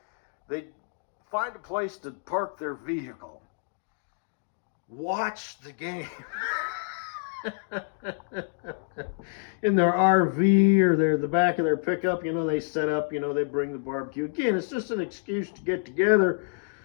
they find a place to park their vehicle, watch the game. In their RV or the back of their pickup, you know, they set up, you know, they bring the barbecue. Again, it's just an excuse to get together,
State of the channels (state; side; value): silent; right; digital silence